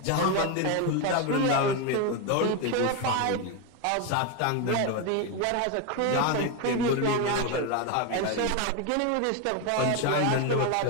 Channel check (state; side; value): different; both; correlation 0.02